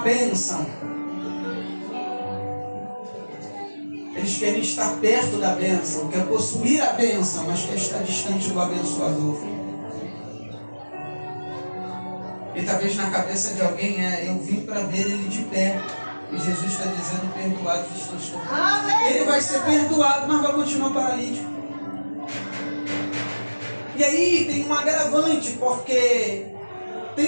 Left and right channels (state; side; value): inverted; both; correlation -1.00